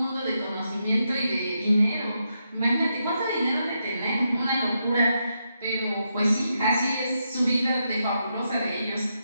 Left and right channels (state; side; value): inverted; both; correlation -0.83